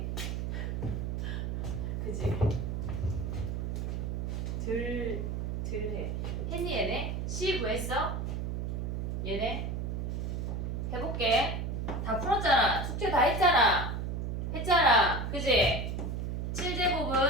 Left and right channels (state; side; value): noise; right; hum, 2 dB below the sound